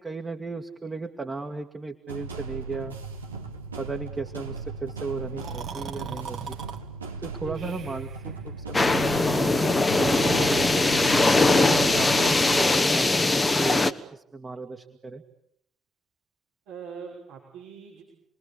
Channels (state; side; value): normal; both; correlation 0.85